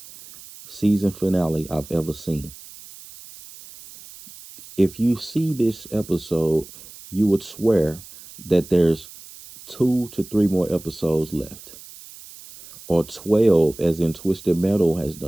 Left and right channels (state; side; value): noise; right; hiss, 18 dB below the sound